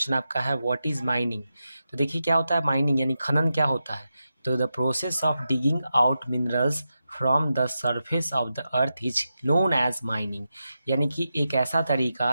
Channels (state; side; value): inverted; both; correlation -0.89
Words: आपका है व्हाट इज़ माइनिंग। तो देखिए क्या होता है माइनिंग, यानी खनन क्या होता है। तो the process of digging out minerals from the surface of the earth is known as mining, यानी कि एक ऐसा